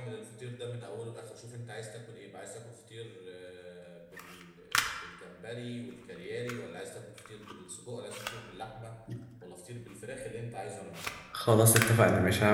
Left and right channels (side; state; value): both; identical; correlation 1.00